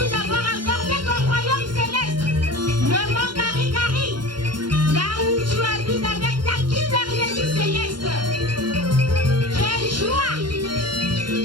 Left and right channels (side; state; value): left; late; 0.72 ms